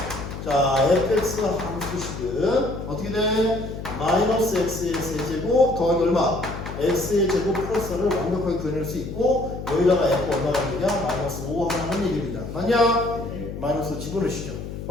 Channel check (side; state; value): left; noise; hum, 8 dB below the sound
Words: 자, fx의 함수식은 어떻게 돼? 마이너스 x의 세제곱 더하기 얼마? x의 제곱 플러스를 완벽하게 구현할 수 있고, 여기다가 f 얼마가 되냐? 마이너스 5 하는 얘기입니다. 맞냐? 마이너스 집어넣으시죠.